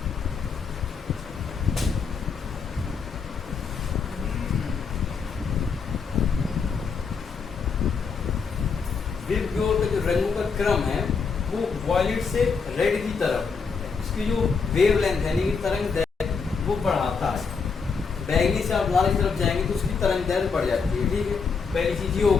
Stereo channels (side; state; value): right; quieter; 5.4 dB